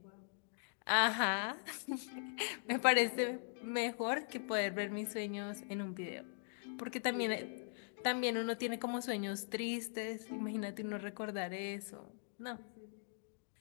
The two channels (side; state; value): right; silent; digital silence